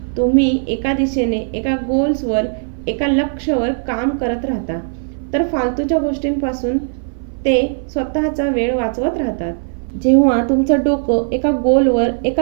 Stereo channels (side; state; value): left; silent; 60 dB below the other